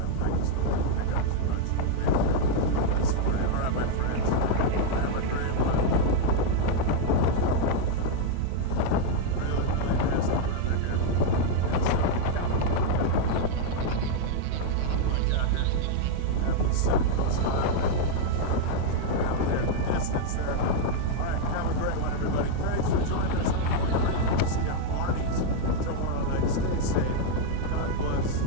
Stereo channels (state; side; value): different; both; correlation -0.01